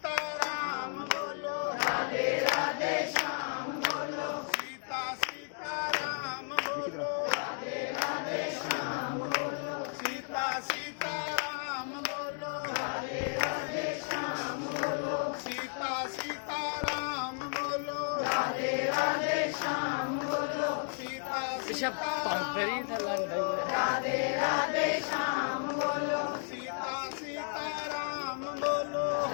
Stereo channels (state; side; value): silent; right; 56 dB below the other